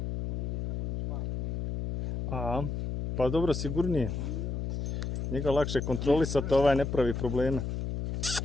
A, pa dobro, sigurnije. Njega lakše kontrolisati, ovaj ne pravi probleme.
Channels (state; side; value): noise; left; hum, 3 dB below the sound